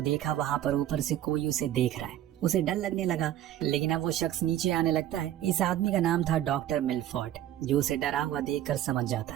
देखा वहाँ पर ऊपर से कोई उसे देख रहा है। उसे डर लगने लगा, लेकिन अब वो शख्स नीचे आने लगता है। इस आदमी का नाम था डॉक्टर मिलफोर्ड, जो उसे डरा हुआ देखकर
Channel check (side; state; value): left; quieter; 12.3 dB